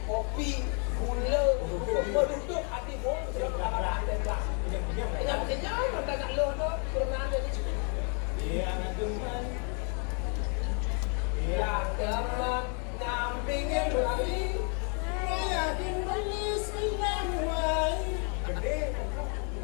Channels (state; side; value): quieter; right; 39.2 dB